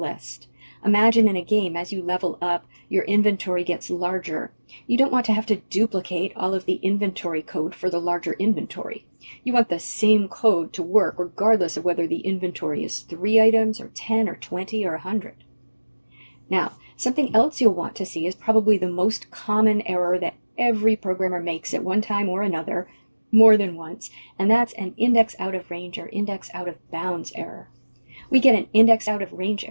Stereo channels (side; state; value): both; inverted; correlation -1.00